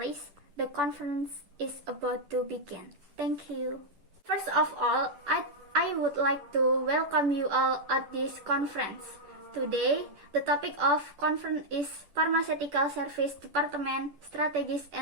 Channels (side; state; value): left; late; 10 ms